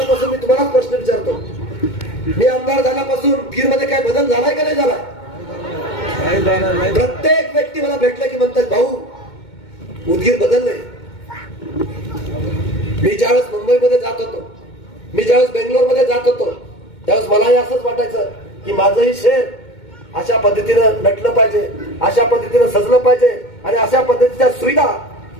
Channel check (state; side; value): late; right; 2.2 ms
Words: मी तुम्हाला प्रश्न विचारतो, मी आमदार झाल्यापासून उदगीरमध्ये काय बदल झालाय का नाही झालाय? प्रत्येक व्यक्ती मला भेटलं की म्हणतात, भाऊ उदगीर बदललंय. मी ज्यावेळेस मुंबईमध्ये जात होतो, मी ज्यावेळेस बेंगलोरमध्ये जात होतो, त्यावेळेस मलाही असंच वाटायचं की माझंही शहर अशा पद्धतीनं नटलं पाहिजे, अशा पद्धतीनं सजलं पाहिजे आणि अशा पद्धतीच्या सुविधा